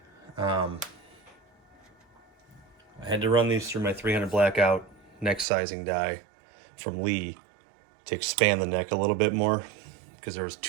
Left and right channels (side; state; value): left; drops out; at 5.5 s